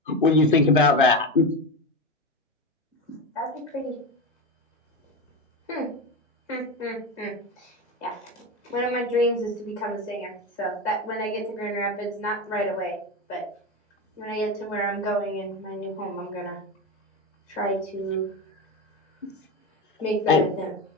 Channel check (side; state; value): both; normal; correlation 0.19